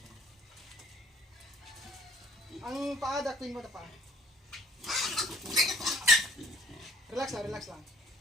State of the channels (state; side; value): normal; both; correlation 0.56